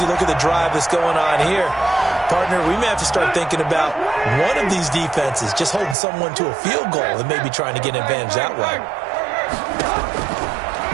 Look at the drive that's going on here. Partner, we may have to start thinking about one of these defenses just holding someone to a field goal and maybe trying to get an advantage that way.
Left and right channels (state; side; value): drops out; left; at 6.0 s